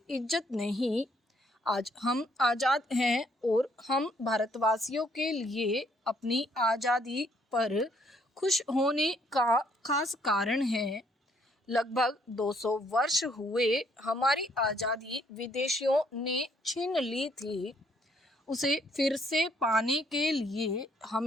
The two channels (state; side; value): normal; both; correlation 0.67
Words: इज्जत नहीं। आज हम आज़ाद हैं और हम भारतवासियों के लिए अपनी आज़ादी पर खुश होने का खास कारण है। लगभग 200 वर्ष हुए हमारी आज़ादी विदेशियों ने छीन ली थी। उसे फिर से पाने के लिए